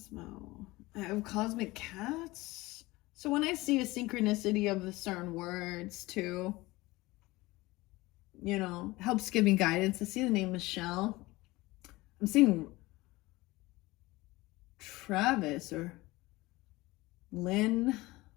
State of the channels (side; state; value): right; quieter; 20.5 dB